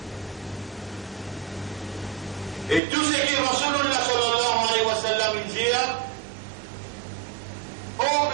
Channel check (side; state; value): left; drops out; at 2.8 s